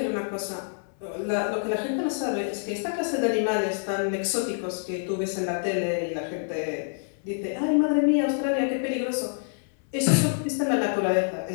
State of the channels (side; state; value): right; silent; 60 dB below the other